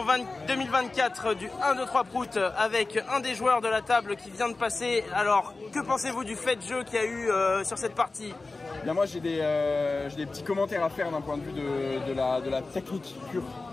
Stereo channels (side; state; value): right; quieter; 3.5 dB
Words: 2024 du 1, 2, 3 Prout avec un des joueurs de la table qui vient de passer. Alors, que pensez-vous du fait de jeu qu'il y a eu sur cette partie? Bien, moi j'ai des petits commentaires à faire d'un point de vue de la technique pure